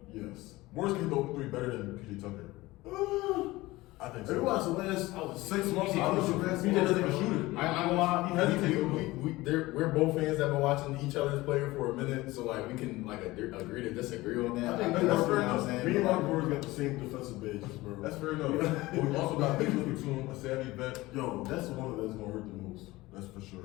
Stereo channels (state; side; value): quieter; right; 19.4 dB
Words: three. Yes, Morris can hit the open three better than PJ Tucker. I think Have you so. watched the last 6 months? I was PJ doesn't even shoot it. I ain't gonna lie. He hesitates. We're both fans that have been watching each other's player for a minute, so like we can like agree to disagree on that. I think that's fair enough. Me and Mark Gordon got the same defensive benches, bro. That's fair enough. But we also got Nicholas Batum, a savvy vet. Yo, that's the one that's gonna hurt the most. That's for